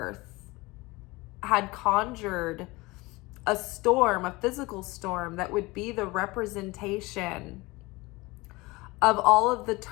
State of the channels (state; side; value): quieter; right; 22.5 dB